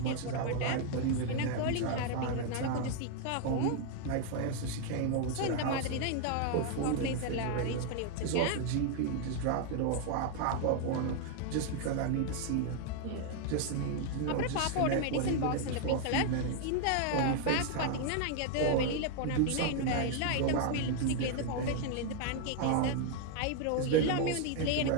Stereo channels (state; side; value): different; both; correlation 0.00